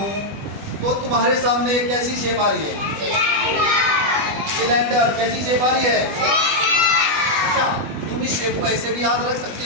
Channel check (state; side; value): late; left; 20 ms